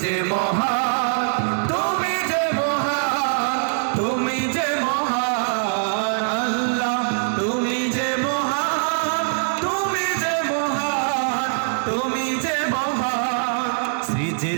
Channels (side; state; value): left; silent; digital silence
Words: যে মহান, তুমি যে মহান, তুমি যে মহান। আল্লাহ তুমি যে মহান, তুমি যে মহান, তুমি যে মহান।